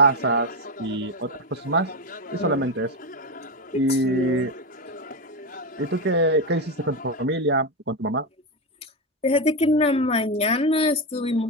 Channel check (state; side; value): normal; both; correlation 0.11